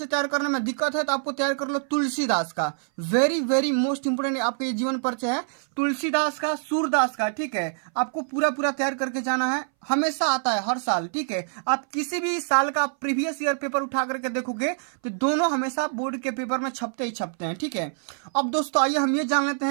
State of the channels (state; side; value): silent; left; 60 dB below the other